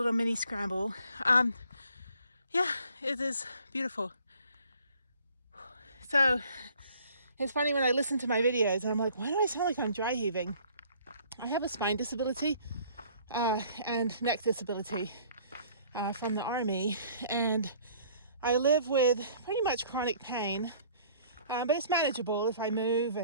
mini scramble. Yeah, it is beautiful. So it's funny when I listen to my videos, I'm like, why do I sound like I'm dry heaving? I have a spine disability and neck disability from the army, and I live with pretty much chronic pain. But it's manageable if I move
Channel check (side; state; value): both; inverted; correlation -0.56